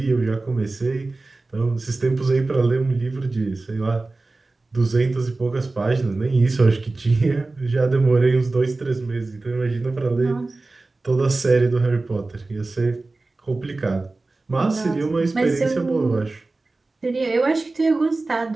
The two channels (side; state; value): left; quieter; 3.3 dB